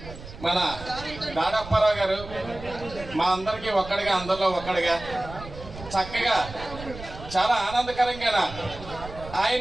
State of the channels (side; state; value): right; noise; rumble, 13 dB below the sound